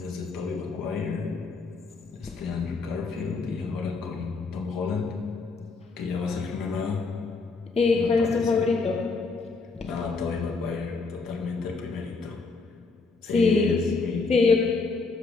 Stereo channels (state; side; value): quieter; right; 4.1 dB